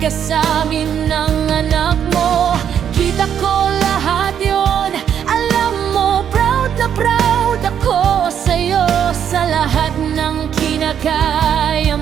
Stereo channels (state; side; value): quieter; left; 8.8 dB